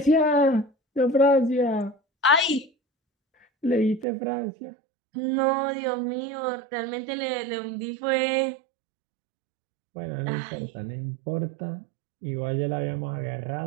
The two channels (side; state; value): left; drops out; at 4.0 s